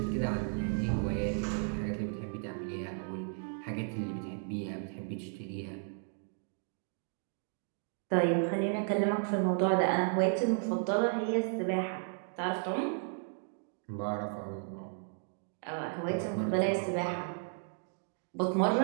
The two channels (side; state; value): left; silent; 55 dB below the other